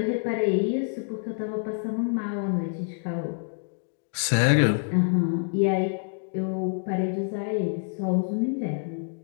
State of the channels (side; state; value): right; silent; digital silence